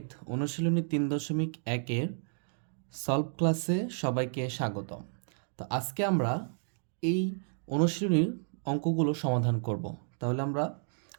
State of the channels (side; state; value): left; silent; digital silence